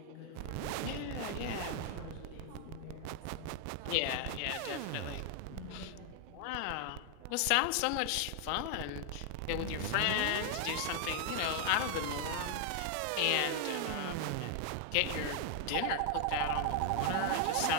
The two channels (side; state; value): both; different; correlation 0.00